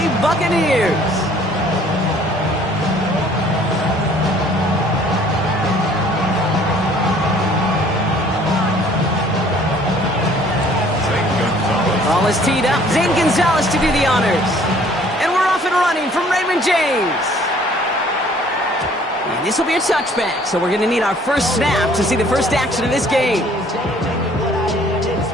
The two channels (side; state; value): both; normal; correlation 0.57